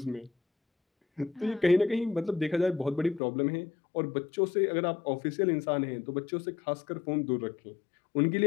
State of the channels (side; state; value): right; drops out; at 3.2 s